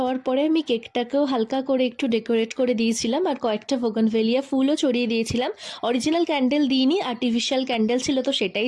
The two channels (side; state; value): both; identical; correlation 1.00